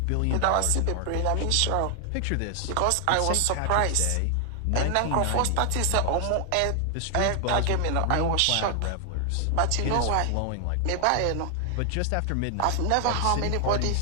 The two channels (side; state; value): both; different; correlation 0.00